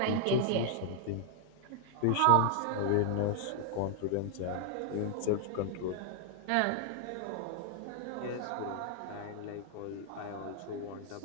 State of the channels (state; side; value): different; both; correlation 0.00